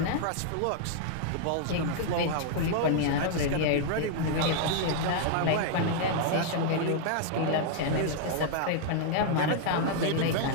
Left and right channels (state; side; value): different; both; correlation -0.01